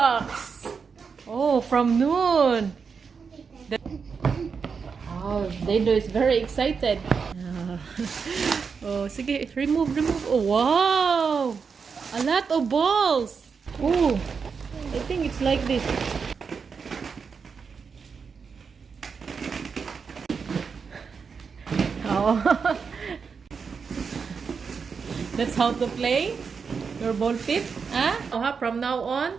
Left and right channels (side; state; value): left; quieter; 5.7 dB